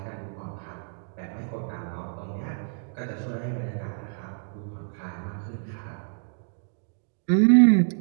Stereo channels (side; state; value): left; silent; digital silence